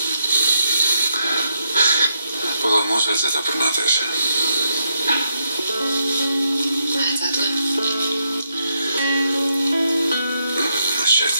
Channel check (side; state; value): both; inverted; correlation -0.80